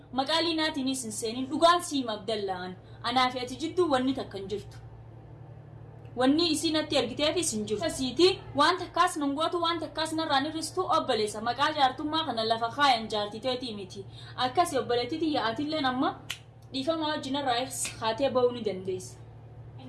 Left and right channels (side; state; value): both; identical; correlation 1.00